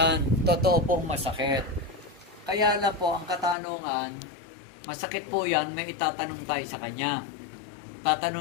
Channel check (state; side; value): drops out; right; at 3.6 s